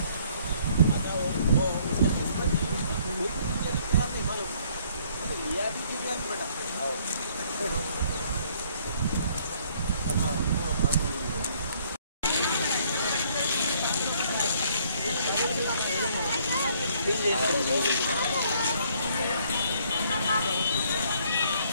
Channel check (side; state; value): both; inverted; correlation -0.63